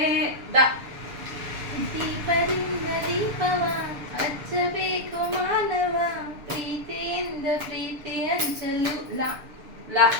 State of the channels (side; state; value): left; late; 6.8 ms